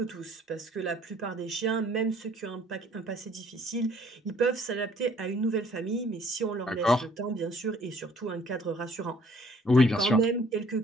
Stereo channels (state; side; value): normal; both; correlation 0.59